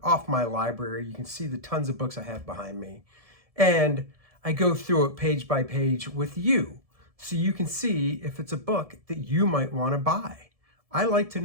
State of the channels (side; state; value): left; late; 1.7 ms